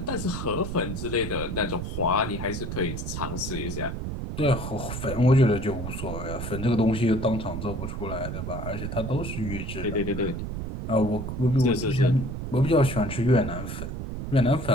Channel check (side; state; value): right; noise; rumble, 5 dB below the sound